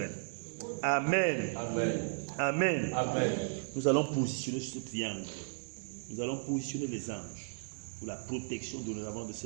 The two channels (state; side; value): silent; left; digital silence